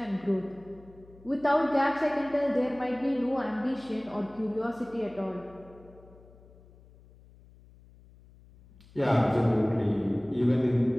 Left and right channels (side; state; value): left; noise; hum, 24 dB below the sound